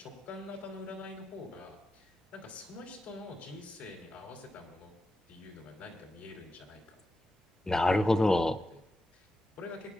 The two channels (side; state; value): both; normal; correlation 0.90